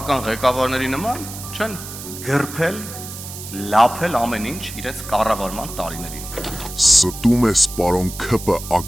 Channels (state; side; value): noise; right; hiss, 11 dB below the sound